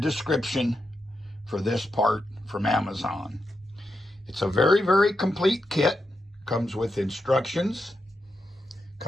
for this part from Amazon. It's a very, very complete kit. Comes with instructions,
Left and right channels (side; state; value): both; normal; correlation 0.86